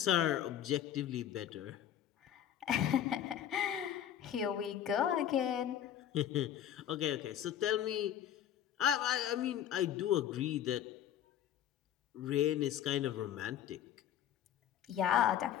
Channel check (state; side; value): quieter; right; 10.3 dB